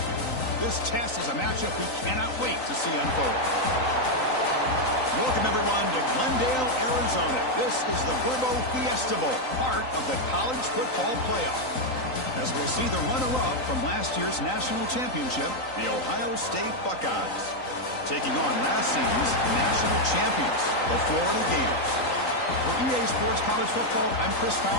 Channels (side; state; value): right; late; 3.9 ms